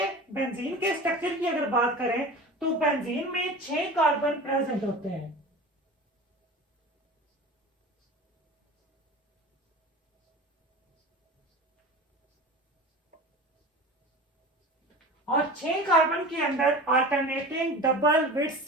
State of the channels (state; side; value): normal; both; correlation 0.34